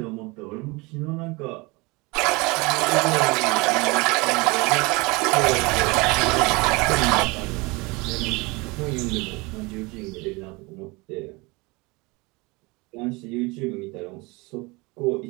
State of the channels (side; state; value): left; quieter; 25.4 dB